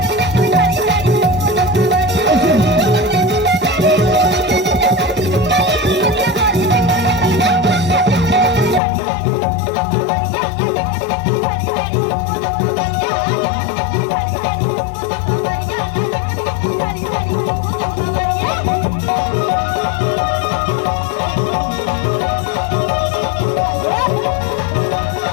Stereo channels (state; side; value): drops out; right; at 8.8 s